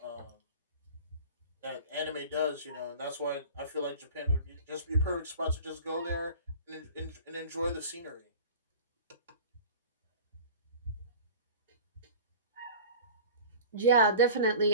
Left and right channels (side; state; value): both; inverted; correlation -0.39